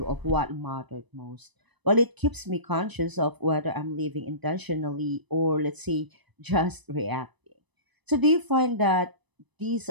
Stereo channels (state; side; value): late; left; 1.0 ms